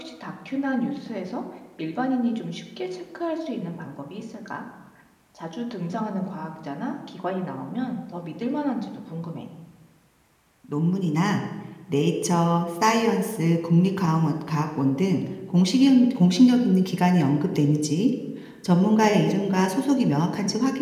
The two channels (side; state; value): both; identical; correlation 1.00